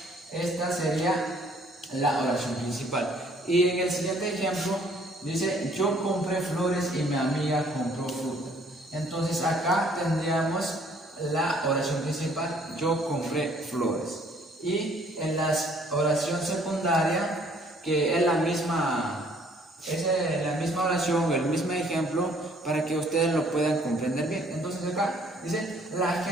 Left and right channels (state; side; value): normal; both; correlation 0.61